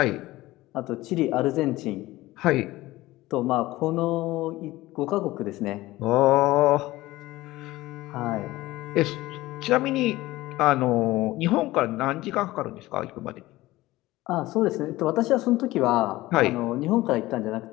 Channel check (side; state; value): right; quieter; 18.0 dB